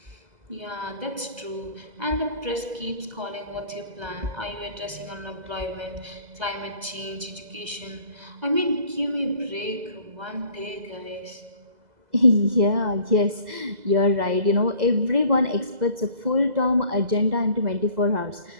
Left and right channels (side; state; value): left; late; 2.0 ms